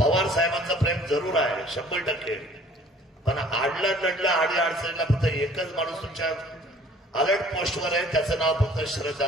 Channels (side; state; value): both; normal; correlation 0.53